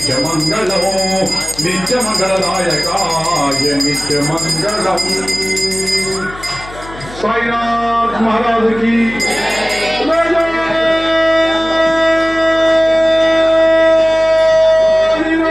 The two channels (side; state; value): left; noise; hum, 17 dB below the sound